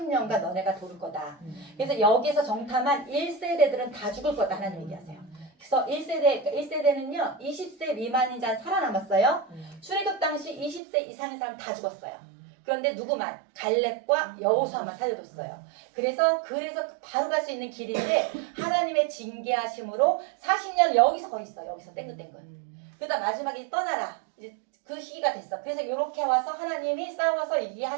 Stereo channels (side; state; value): left; drops out; at 10.8 s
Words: 너네가 도를 거다. 그래서 여기서 정탐한 1세대들은 다 죽을 거다 하나님 얘기하세요. 그래서 1세대는요 20세 미만인 자는 살아남았어요. 출애굽 당시 20세 이상인 사람 다 죽었어요. 그런데 누구만? 갈렙과 여호수아만 살려뒀어요. 그래서 바로 갈 수 있는 길인데 하나님의 징계하심으로 40년 여기서 거기 있어. 여기서 땡글땡글. 그러다 마지막에 떠나라. 이제 그 시기가 됐어. 그래서 이렇게 와서 하나님이 싸워서